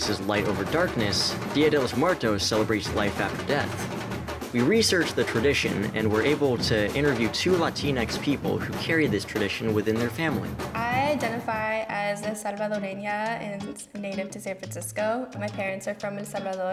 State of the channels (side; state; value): both; identical; correlation 1.00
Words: light over darkness, Dia de los Muertos celebrates life after death. We researched the tradition and were able to interview two Latinx people who carry this tradition within their family. I identify as a Salvadoreña and native to San Francisco. My parents are from El